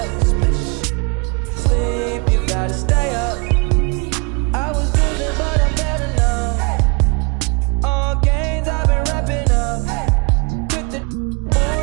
Sleep, you gotta stay up. I was losing, but I'm better now. All games I've been wrapping up. With the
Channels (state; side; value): quieter; left; 31.9 dB